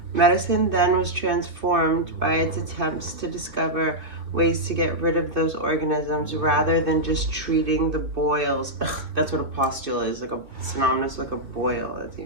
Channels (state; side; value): late; left; 2.8 ms